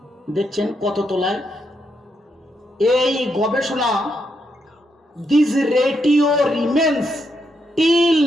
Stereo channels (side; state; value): both; normal; correlation 0.80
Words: দেখছেন কত তোলায় এই গবেষণা। This ratio remains till